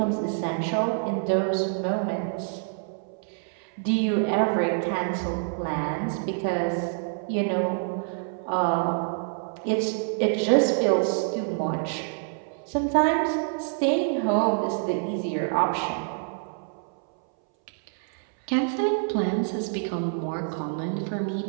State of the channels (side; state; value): left; silent; 60 dB below the other